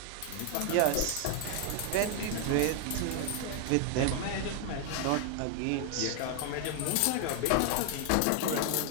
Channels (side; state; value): both; different; correlation 0.00